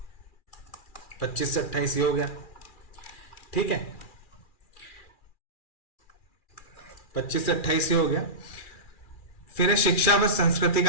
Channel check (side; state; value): right; late; 2.4 ms